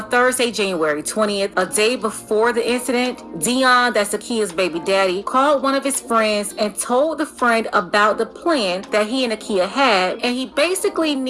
Thursday, January 20th, a day before the incident, Dion, that's Akia's baby daddy, called one of his friends and told the friend about the plan that he and Akia had, and he basically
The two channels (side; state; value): both; identical; correlation 1.00